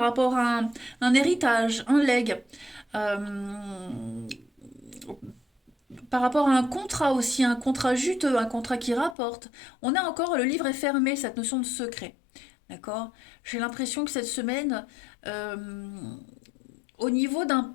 rapport à un héritage, un legs. par rapport à un contrat aussi, un contrat juteux, un contrat qui rapporte. On a encore, le livre est fermé, cette notion de secret. D'accord? J'ai l'impression que cette semaine, au niveau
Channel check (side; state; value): right; drops out; at 9.2 s